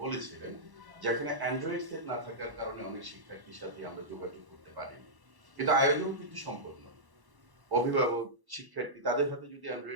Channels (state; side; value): late; left; 1.1 ms